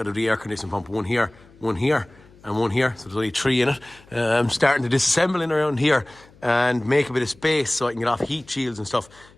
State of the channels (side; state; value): left; noise; hum, 26 dB below the sound